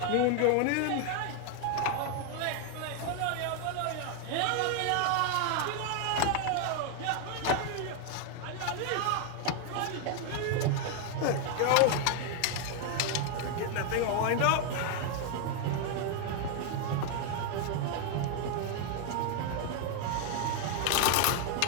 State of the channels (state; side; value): different; both; correlation 0.01